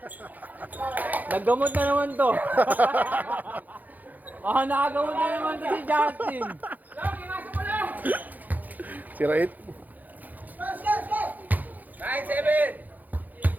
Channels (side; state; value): left; late; 0.082 ms